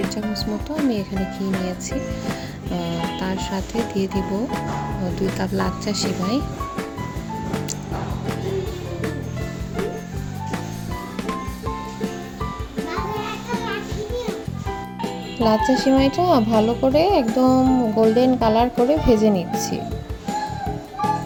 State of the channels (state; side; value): identical; both; correlation 1.00